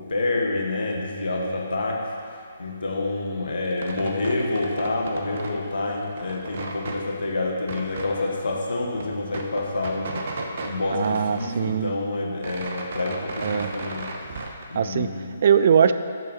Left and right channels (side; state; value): both; inverted; correlation -0.75